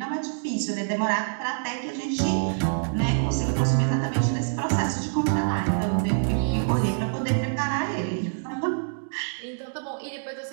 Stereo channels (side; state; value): left; silent; digital silence